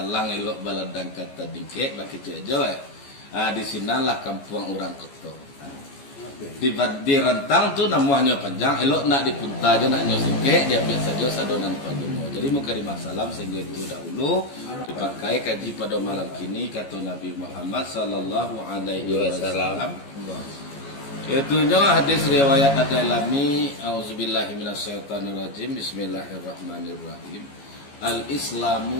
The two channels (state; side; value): late; right; 14 ms